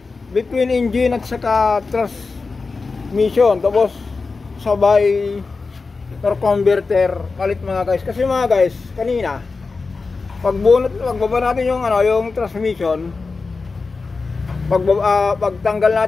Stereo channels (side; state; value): right; quieter; 4.2 dB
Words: between engine at saka transmission, tapos sabay torque converter palit mga guys. Kasi mga guys, kanina pagbaba natin yung yung transmission, pagtanggal